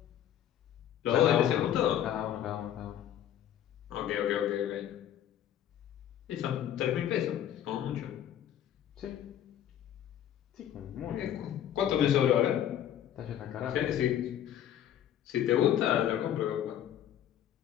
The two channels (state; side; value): quieter; right; 10.7 dB